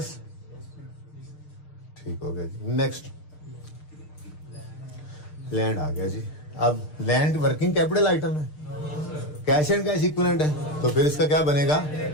ठीक हो गया जी। नेक्स्ट, लैंड आ गया जी। अब लैंड वर्किंग कैपिटल आइटम है, कैश एंड कैश इक्विवेलेंट है, तो फिर इसका क्या बनेगा?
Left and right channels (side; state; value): right; late; 6.6 ms